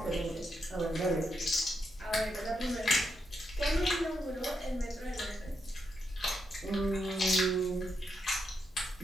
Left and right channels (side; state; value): both; normal; correlation 0.83